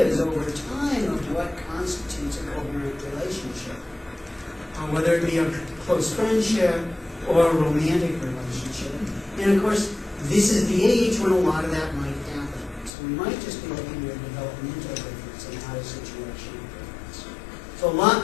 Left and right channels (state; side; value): drops out; right; at 12.9 s